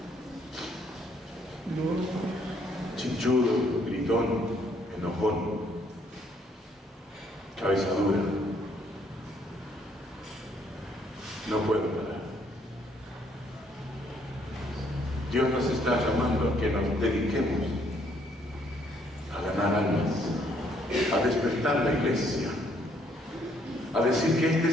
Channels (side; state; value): both; normal; correlation 0.68